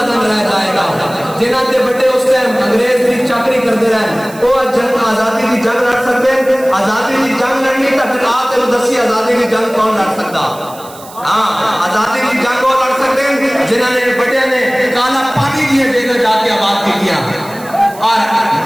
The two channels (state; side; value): noise; right; hiss, 19 dB below the sound